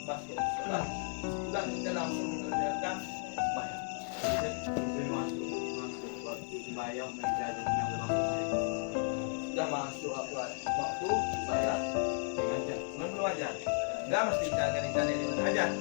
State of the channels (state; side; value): silent; right; 55 dB below the other